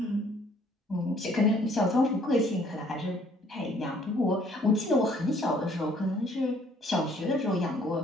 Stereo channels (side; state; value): both; normal; correlation 0.61